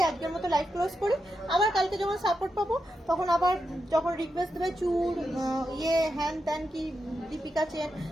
আজকের মতো লাইভ ক্লোজ করি। আবার কালকে যখন সাপোর্ট পাবো তখন আবার যখন রিকোয়েস্ট দেবে চুর হ্যান ত্যান কি দীপিকা চেন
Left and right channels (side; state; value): both; normal; correlation 0.87